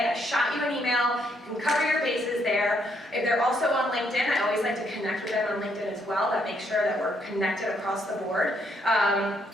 I shot you an email, you can cover your bases there. If they're also on LinkedIn, I always like to connect with them on LinkedIn as well. That makes sure that we're connected across the board.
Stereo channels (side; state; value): both; normal; correlation 0.73